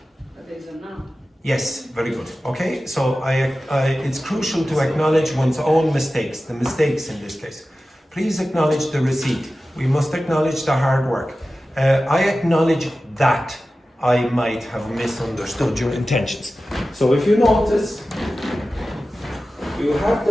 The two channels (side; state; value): both; normal; correlation 0.95